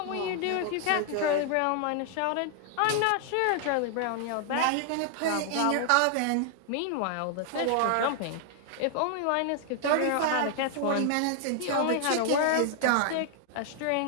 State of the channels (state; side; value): different; both; correlation 0.00